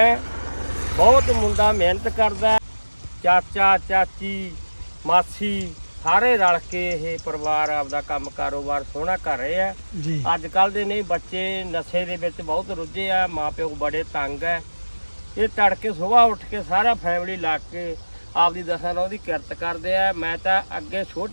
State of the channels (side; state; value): both; inverted; correlation -1.00